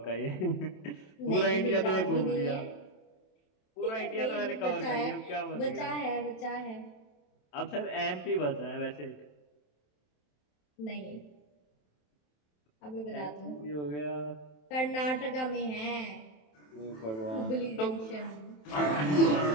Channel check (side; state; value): right; late; 27 ms